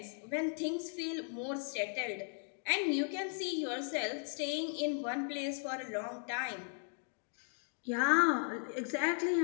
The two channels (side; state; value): right; silent; 53 dB below the other